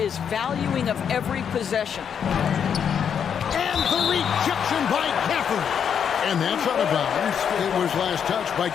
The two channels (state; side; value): quieter; right; 7.8 dB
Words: valuing of every possession. And the rejection by Gafford. And that's out of bounds. It was last touched by